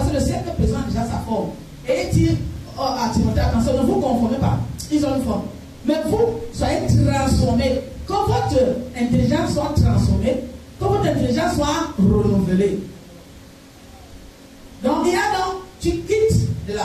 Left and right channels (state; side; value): identical; both; correlation 1.00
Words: que le siècle présent a déjà sa forme. Et il dit à Timothée, attention, ne vous conformez pas. Ils ont une forme. Mais vous, soyez transformés. Que votre intelligence soit transformée, que votre intelligence soit renouvelée. Donc, il y a donc, tu quittes de